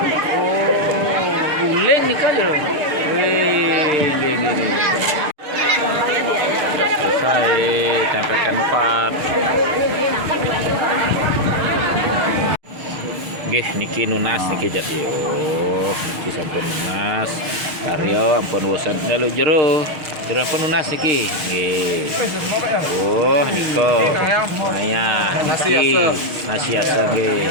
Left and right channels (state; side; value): late; left; 6.5 ms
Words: Oh, guling nih kan jero. Wih, nggih. Sudah selesai tempelkan 4. Nggih niki nunas niki jadi. Oh, niki sampun nunas. Karyo ampun bosan dalu jero ampun nunas niki. Nggih. Oh, niko. Maya niki nasi asa nggih.